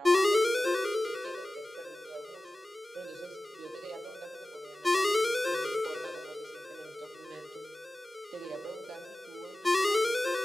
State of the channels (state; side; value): normal; both; correlation 0.97